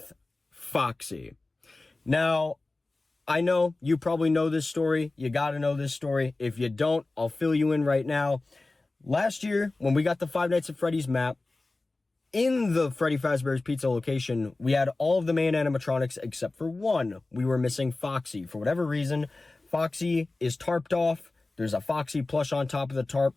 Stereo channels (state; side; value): quieter; right; 3.2 dB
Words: Foxy. Now, I know you probably know this story. You got to know this story. If you don't, I'll fill you in right now. Last year, when we got the Five Nights at Freddy's map, in the Freddy Fazbear's Pizza location, we had all of the main animatronics except for one. We were missing Foxy. For whatever reason, Foxy is tarped off. There's a Foxy plush on top of the tarp.